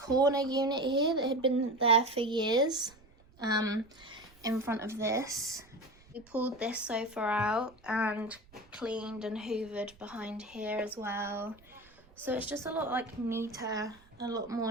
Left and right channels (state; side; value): noise; right; rumble, 27 dB below the sound